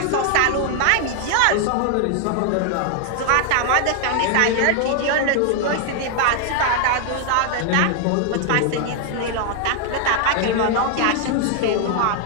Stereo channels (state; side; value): different; both; correlation 0.00